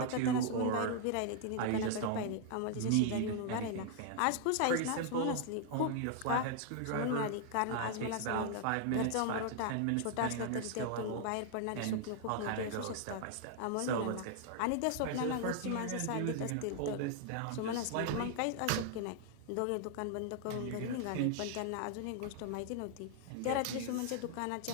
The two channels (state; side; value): different; both; correlation 0.00